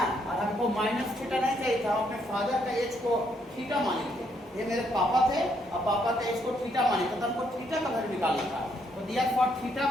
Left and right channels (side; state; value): both; normal; correlation 0.73